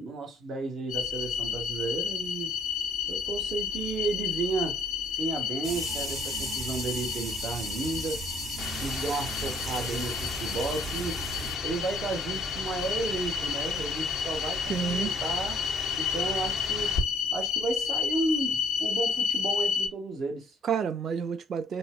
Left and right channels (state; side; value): normal; both; correlation 0.60